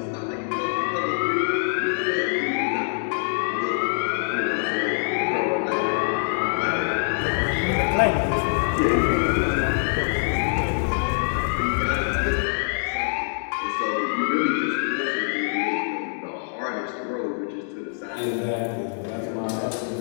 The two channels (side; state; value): right; silent; digital silence